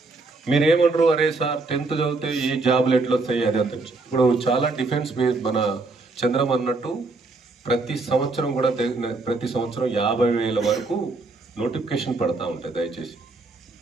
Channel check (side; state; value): left; quieter; 3.5 dB